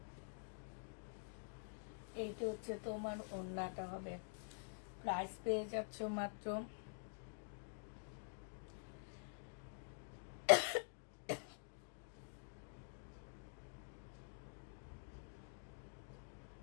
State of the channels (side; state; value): right; silent; digital silence